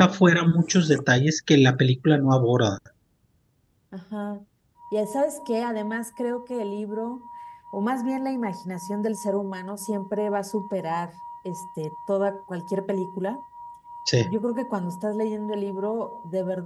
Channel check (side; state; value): both; identical; correlation 1.00